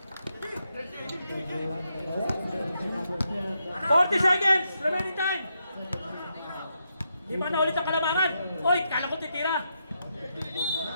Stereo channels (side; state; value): both; inverted; correlation -0.82